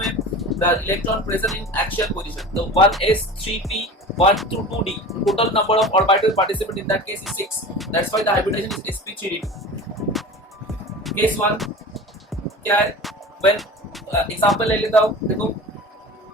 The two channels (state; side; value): normal; both; correlation 0.35